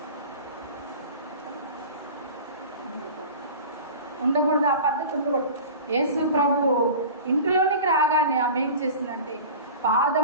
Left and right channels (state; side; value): inverted; both; correlation -0.37